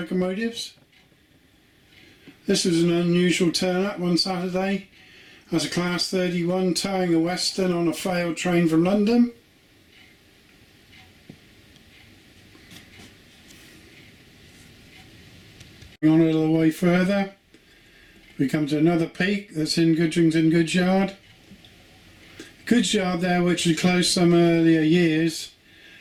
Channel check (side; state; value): both; identical; correlation 1.00